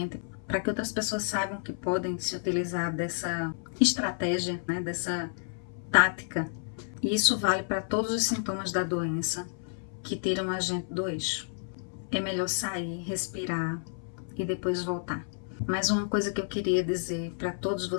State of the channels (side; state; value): right; silent; 58 dB below the other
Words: para que outras pessoas saibam que podem se utilizar dessa estratégia, né, dessa tática. E isso vale para todos os sintomas da doença que tiram a gente do eixo. É melhor sair, respirar e depois voltar. Mas uma coisa que eu queria dizer para todos